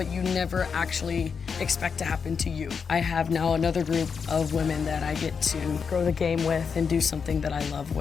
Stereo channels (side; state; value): right; quieter; 6.0 dB